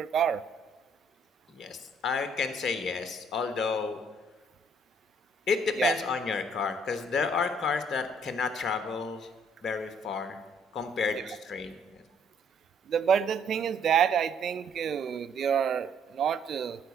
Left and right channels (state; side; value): normal; both; correlation 0.64